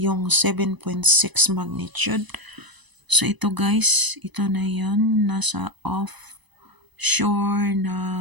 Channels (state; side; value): late; left; 1.0 ms